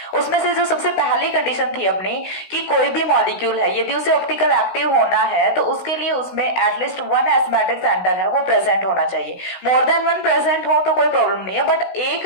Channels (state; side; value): late; right; 16 ms